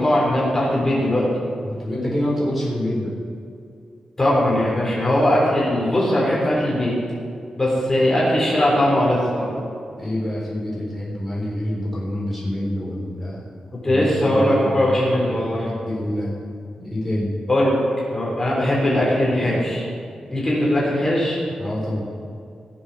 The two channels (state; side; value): normal; both; correlation 0.90